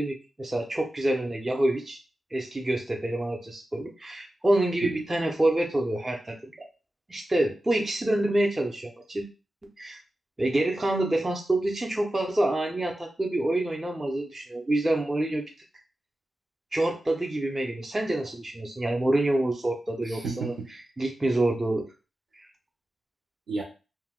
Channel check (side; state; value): both; normal; correlation 0.94